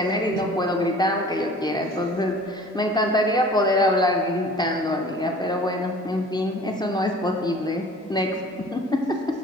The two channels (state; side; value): normal; both; correlation 0.47